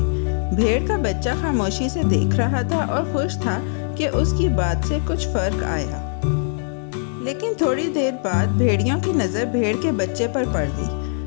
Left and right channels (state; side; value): silent; right; digital silence